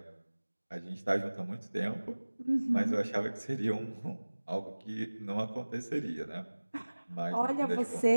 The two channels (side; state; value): both; inverted; correlation -1.00